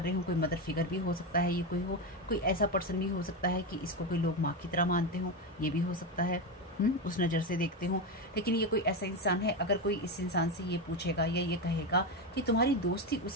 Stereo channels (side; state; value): both; normal; correlation 0.13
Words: रहे हो, कोई मदर फिगर भी हो सकता है, ये कोई ऐसा पर्सन भी हो सकता है कि इसको कोई लोग माँ की तरह मानते हो, ये भी हो सकता है, उस नज़र से देखते हो। लेकिन ये कोई ऐसा इंसान है, अगर कोई इस इंसान से ये पूछेगा या ये कहेगा कि तुम्हारी दोस्ती